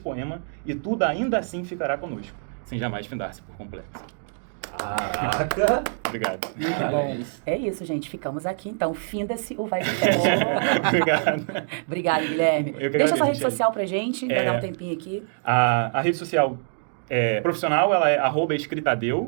e tudo ainda assim ficará conosco, sem jamais findar-se por completo. Caraca! Obrigado. Muito bom. É isso, gente. Ficamos aqui, então. Finda-se o Vibe Fest. Obrigado. Obrigado, Guilherme. Eu que Deixa agradeço, sua rede Michele. social pra gente, vai dar um tempinho aqui. A rede social profissional, ela é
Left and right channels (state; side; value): silent; left; digital silence